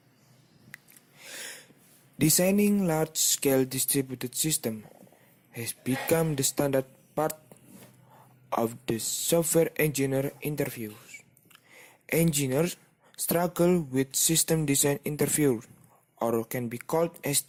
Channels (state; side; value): identical; both; correlation 1.00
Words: Designing large-scale distributed systems has become the standard part of the software engineer interviews. Engineers struggle with system design interviews, or can be called